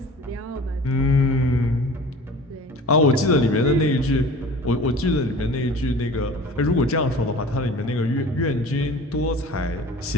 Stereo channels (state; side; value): normal; both; correlation 0.42